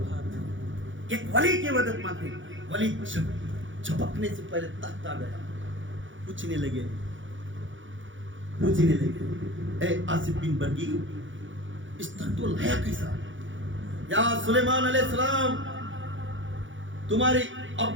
ایک ولی کی مدد مانگتے، ولی جھپکنے سے پہلے تخت آ گیا. پوچھنے لگے اے آصف بن برکی اس تخت کو لایا کیسا؟ یا سلیمان علیہ السلام تمہاری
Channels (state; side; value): late; left; 0.56 ms